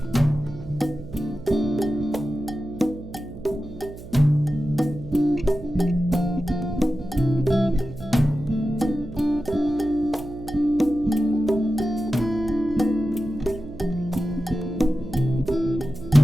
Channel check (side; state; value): right; noise; hum, 14 dB below the sound